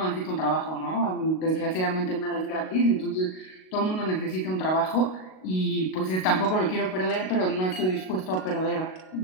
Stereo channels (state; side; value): late; right; 38 ms